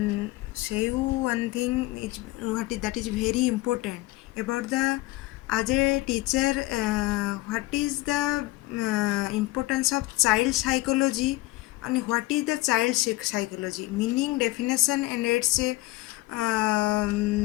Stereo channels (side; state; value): right; quieter; 19.5 dB